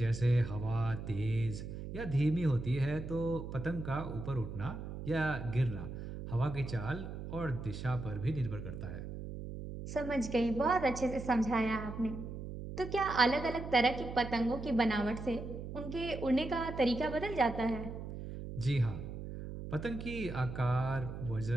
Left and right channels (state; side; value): noise; right; hum, 8 dB below the sound